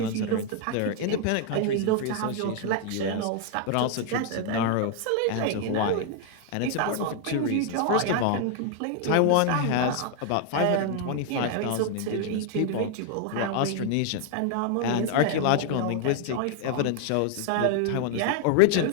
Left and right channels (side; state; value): both; different; correlation 0.00